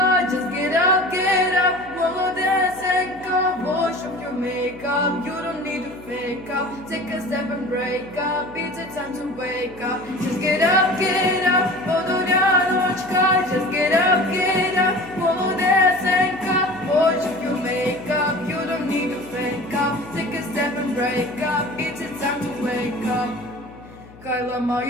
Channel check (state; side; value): noise; left; hum, 21 dB below the sound